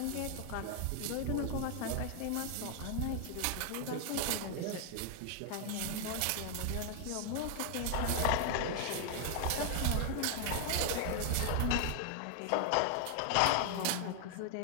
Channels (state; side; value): different; both; correlation 0.00